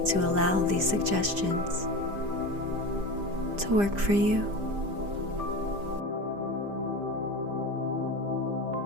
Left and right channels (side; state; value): left; late; 5.0 ms